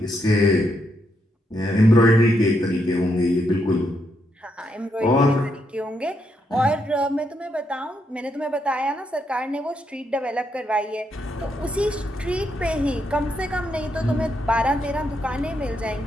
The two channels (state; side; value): normal; both; correlation 0.79